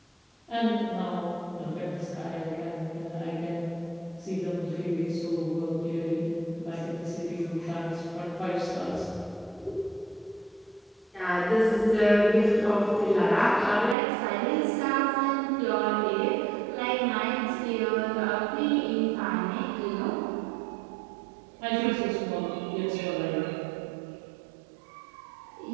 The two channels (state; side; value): drops out; left; at 14.0 s